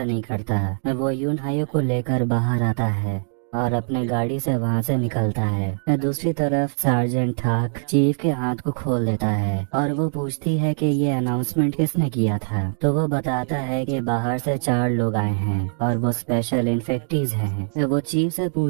नहीं करता। वो यून हायुक को लेकर बाहर आता है और अपने गाड़ी से वहाँ से निकलता है। दूसरी तरफ सार्जेंट ठाक चीफ के हाथ को खोल देता है और वो पूछती है कि ये अनाउंसमेंट किसने किया था। तो वो बताता है कि बाहर से 4 लोग आए हैं और वो स्पेशल इन्फेक्टीज हैं। वो चीफ से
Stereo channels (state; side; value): silent; left; digital silence